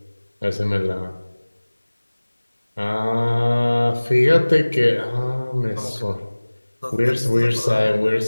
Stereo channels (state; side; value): inverted; both; correlation -1.00